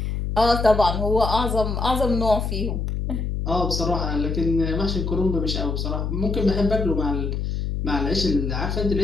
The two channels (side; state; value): left; noise; hum, 2 dB below the sound